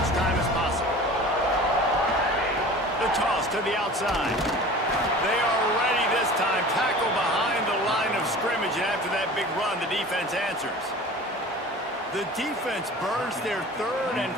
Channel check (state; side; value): normal; both; correlation 0.40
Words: time as possible. The toss to the outside. They are ready this time. Tackle behind the line of scrimmage, and after that big run, the defense answers. The defense burns their 3rd and